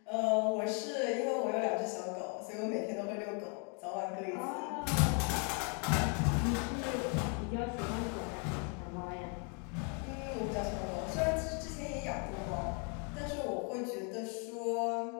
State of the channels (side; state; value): right; quieter; 37.8 dB